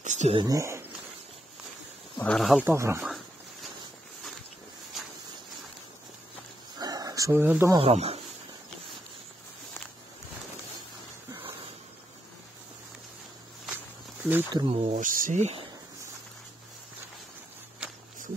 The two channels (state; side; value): normal; both; correlation 0.80